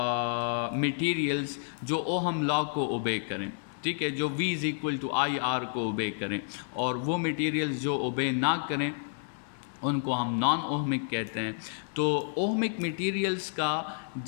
मटेरियल्स जो ओहम लॉ को ओबे करें, ठीक है, जो V = IR को ओबे करें, और वो मटेरियल्स जो ओबे ना करें उनको हम नॉन ओहमिक कहते हैं। तो ओहमिक मटेरियल्स का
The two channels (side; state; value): right; silent; digital silence